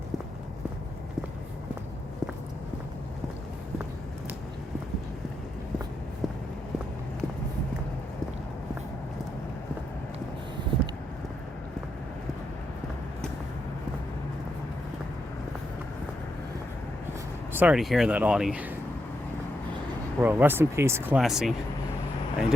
Sorry to hear that, Audie. Well, rest in peace, Classy. I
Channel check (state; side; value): normal; both; correlation 0.82